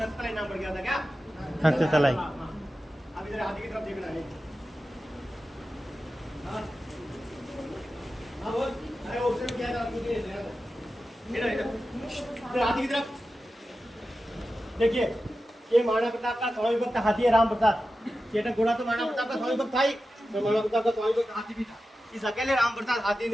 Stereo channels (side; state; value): both; normal; correlation 0.93